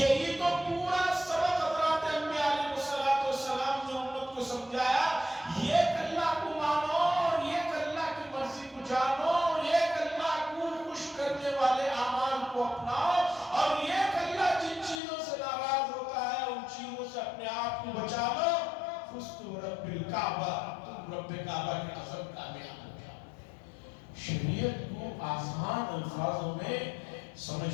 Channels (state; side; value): drops out; right; at 15.0 s